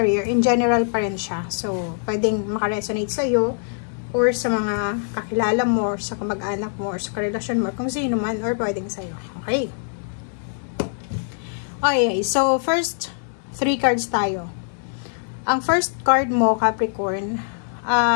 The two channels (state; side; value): silent; right; 58 dB below the other